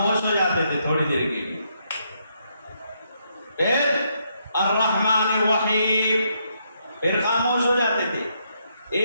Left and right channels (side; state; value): both; inverted; correlation -0.76